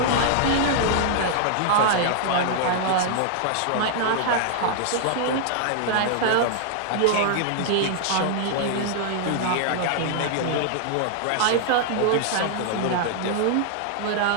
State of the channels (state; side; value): different; both; correlation -0.01